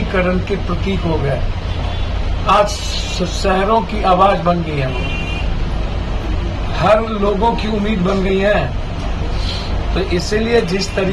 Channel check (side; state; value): both; identical; correlation 1.00